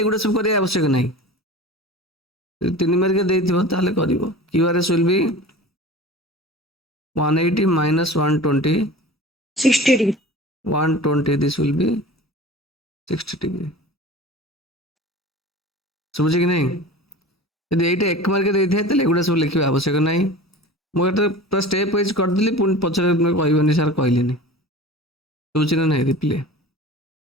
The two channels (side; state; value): both; normal; correlation 0.37